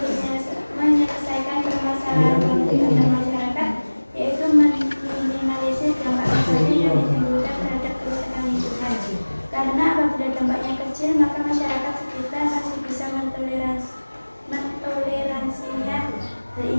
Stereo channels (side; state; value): both; inverted; correlation -1.00